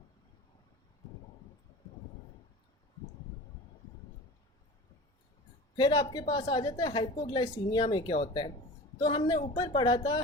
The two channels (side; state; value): both; normal; correlation 0.36